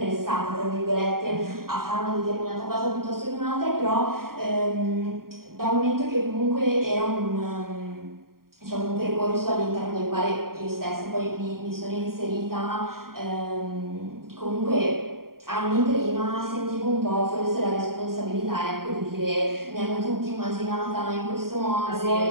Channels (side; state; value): left; late; 0.92 ms